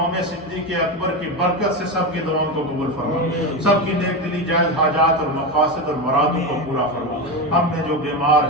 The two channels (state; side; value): normal; both; correlation 0.16